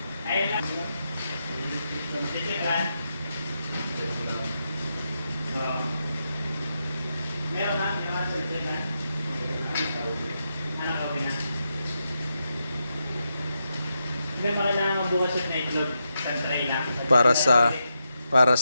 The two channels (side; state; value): both; inverted; correlation -0.85